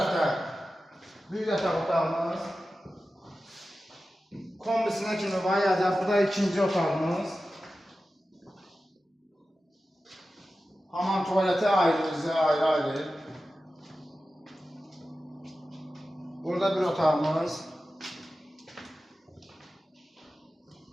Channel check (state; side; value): normal; both; correlation 0.94